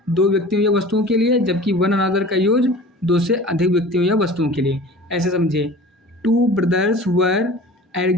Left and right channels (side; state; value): both; normal; correlation 0.41